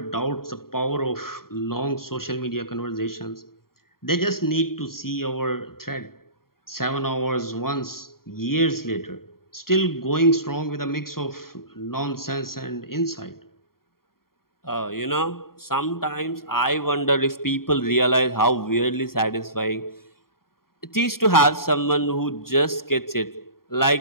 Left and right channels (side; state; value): right; late; 0.93 ms